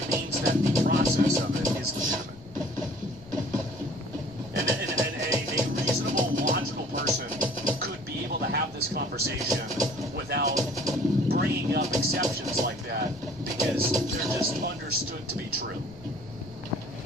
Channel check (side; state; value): left; noise; rumble, 20 dB below the sound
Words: means that the process of it is legitimate. And a reasonable, logical person could be able to have this conversation without bringing up exceptions like that because they're just understood to be true.